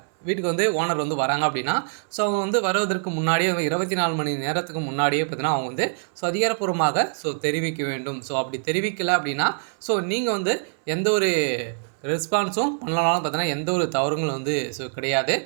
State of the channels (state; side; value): silent; left; 62 dB below the other